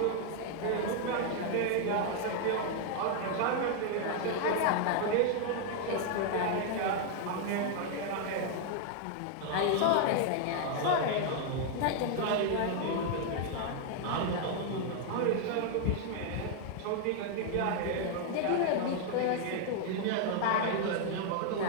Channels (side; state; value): both; different; correlation 0.00